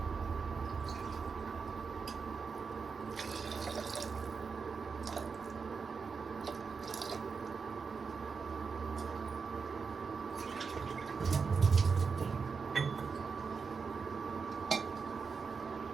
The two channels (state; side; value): quieter; left; 5.3 dB